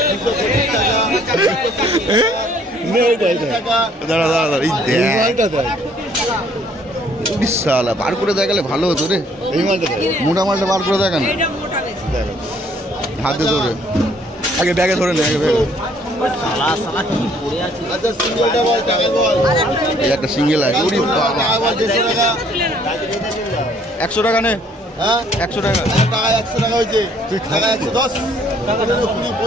220 টাকা, 220 টাকা। দাঁড়া দাঁড়া দাঁড়া, এই দেখ বিশাল বার করে দেখালে ভালো হতো রে। এই মালটা দেখ। মোটা মালটা বার করে দেখা না, হাতে ধরে আগে ব্যাগে ধরে নে, আগে ব্যাগে। আচ্ছা সিঙ্গেলটা বল, টাকা বল। এই একটা সিঙ্গেল আছে। ওরে বাবা, টাকা বল, 150 টাকা। 100 টাকা নে। হ্যাঁ 100 টাকা। টাকা 100 টাকা হয়েছে। টাকা 110, 15, 20,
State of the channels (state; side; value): normal; both; correlation 0.62